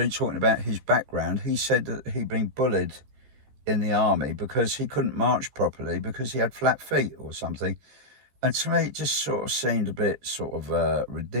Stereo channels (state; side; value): late; left; 14 ms